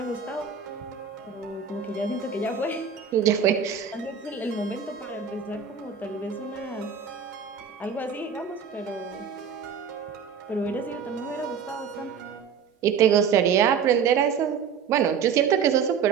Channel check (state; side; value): quieter; left; 6.8 dB